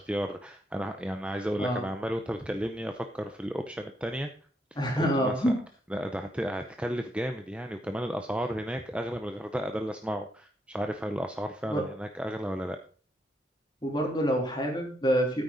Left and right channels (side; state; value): both; normal; correlation 0.77